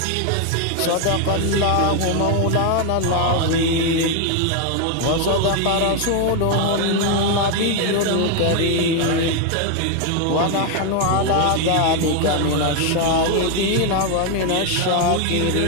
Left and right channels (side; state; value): both; different; correlation 0.01